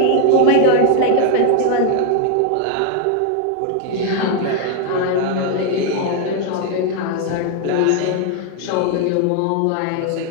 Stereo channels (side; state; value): both; different; correlation 0.00